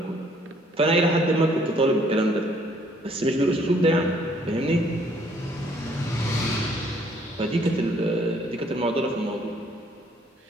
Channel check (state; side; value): normal; both; correlation 0.63